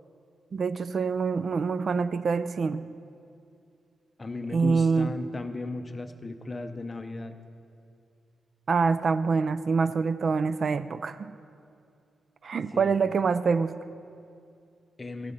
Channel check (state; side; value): quieter; left; 4.2 dB